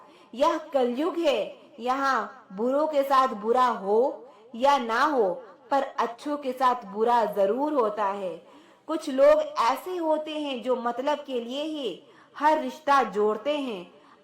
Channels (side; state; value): both; identical; correlation 1.00